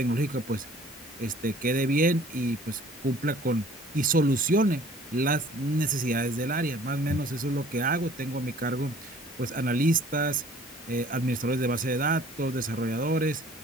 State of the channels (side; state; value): both; normal; correlation 0.52